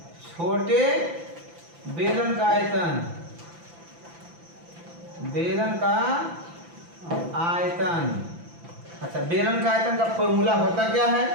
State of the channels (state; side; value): late; left; 5.9 ms